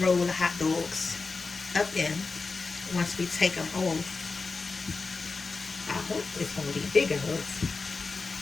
the hot dogs up in once we take them home. I hope it's going to be big enough.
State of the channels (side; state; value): right; quieter; 4.2 dB